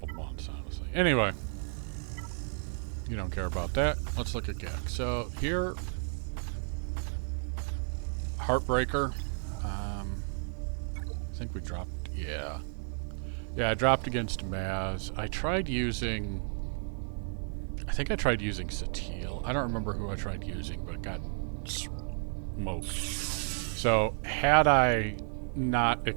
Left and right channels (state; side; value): silent; left; 56 dB below the other